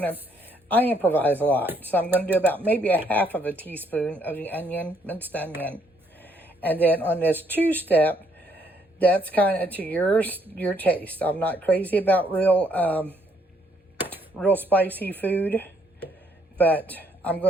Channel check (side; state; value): both; normal; correlation 0.69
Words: improvise a lot. So I'm going to do about maybe a half of a teaspoon of the onion, minced onion. And then on this two-step, that's kind of to your taste. I'm not crazy about real spicy food, but I'm